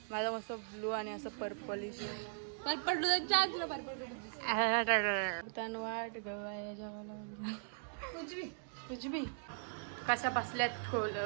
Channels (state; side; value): silent; left; digital silence